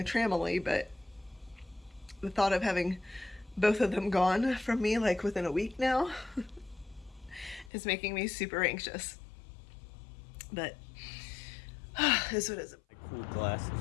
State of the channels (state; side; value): drops out; right; at 7.7 s